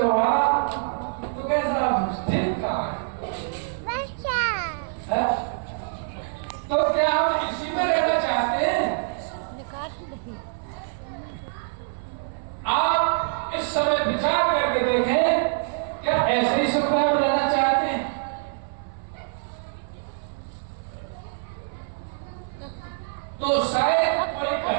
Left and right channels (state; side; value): silent; left; 57 dB below the other